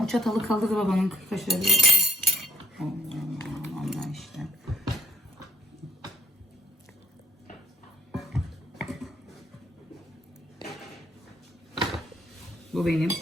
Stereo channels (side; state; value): both; normal; correlation 0.63